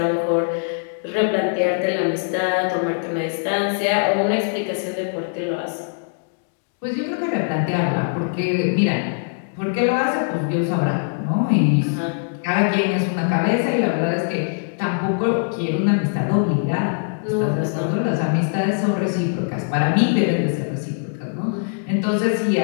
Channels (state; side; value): silent; right; digital silence